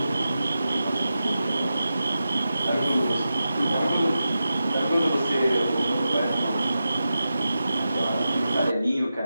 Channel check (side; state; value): both; inverted; correlation -0.91